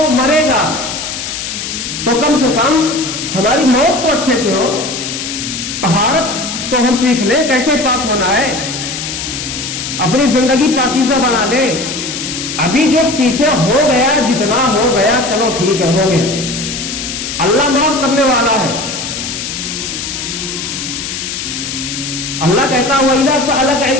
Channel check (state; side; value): noise; left; hiss, 5 dB below the sound